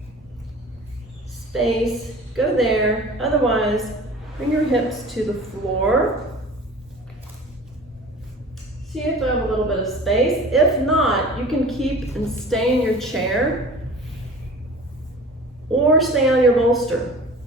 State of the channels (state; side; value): normal; both; correlation 0.41